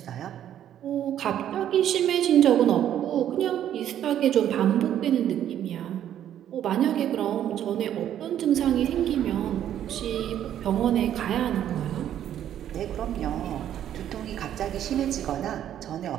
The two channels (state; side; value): quieter; left; 10.7 dB